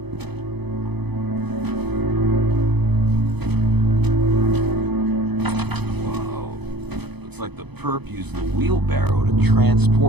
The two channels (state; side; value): late; left; 0.98 ms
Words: Whoa. Looks like the perp used the wheelbarrow to